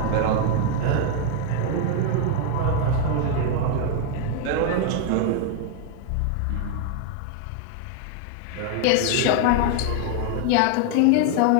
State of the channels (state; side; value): different; both; correlation 0.00